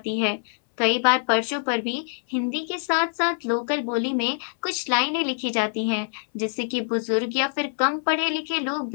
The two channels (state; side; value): silent; right; 62 dB below the other